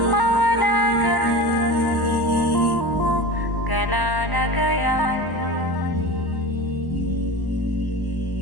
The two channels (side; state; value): right; late; 1.0 ms